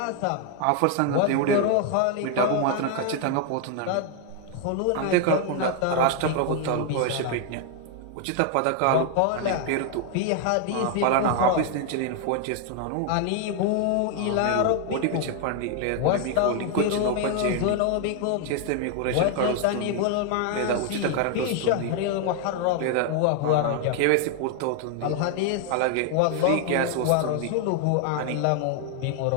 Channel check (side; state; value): both; different; correlation 0.00